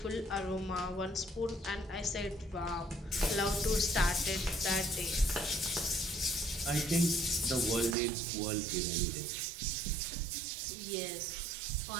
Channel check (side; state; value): left; drops out; at 8.0 s